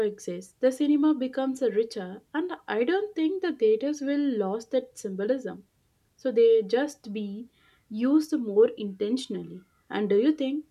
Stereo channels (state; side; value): identical; both; correlation 1.00